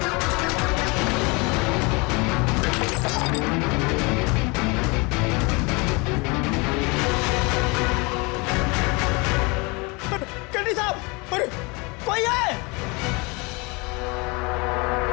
केडी साहब, अरे कोई है?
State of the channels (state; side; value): quieter; right; 27.8 dB